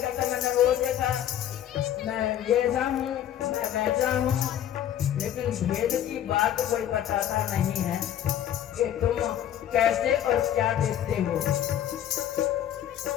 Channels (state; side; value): quieter; right; 10.8 dB